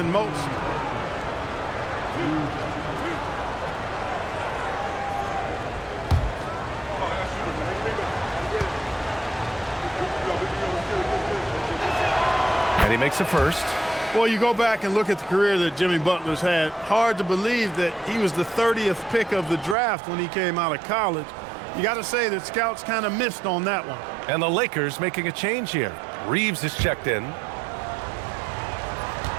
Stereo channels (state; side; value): drops out; left; at 19.8 s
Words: most. And he makes the first. Well, you go back and look at the career that Jimmy Butler's had. Hard to believe that he was the 30th pick of the draft when he came out of college. You got to say that scouts kind of missed on that one. And the Lakers making a change here. Reeves is checked in.